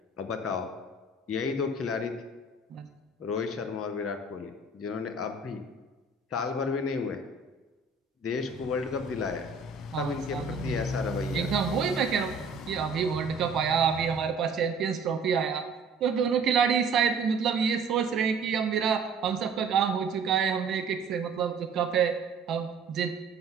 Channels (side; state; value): left; quieter; 4.0 dB